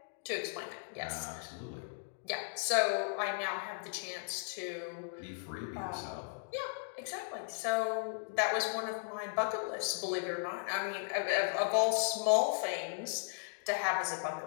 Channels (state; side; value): silent; right; digital silence